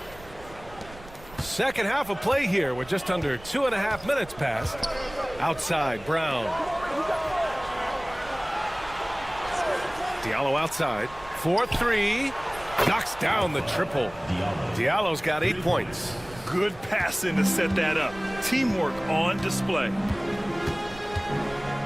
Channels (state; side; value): noise; right; rumble, 19 dB below the sound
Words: Second half of play here with just under 2.5 minutes passed. Outside, Brown. Diallo outside. 4-3. Knocks down the triple. Diallo's got 8 points. Good passing to set that up. Teamwork on display.